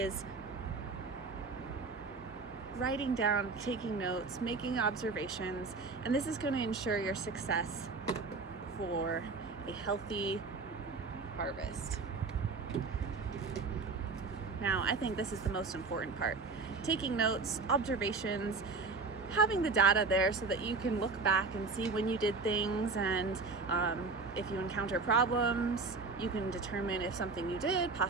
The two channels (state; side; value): quieter; left; 4.1 dB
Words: writing down, taking notes, making observations, and this is going to ensure your success for a healthy harvest. Now, I think this is the most important part. Taking notes, observations, having the data there so that you can look back and see when you did things, and if you encounter problems, you can determine if something you did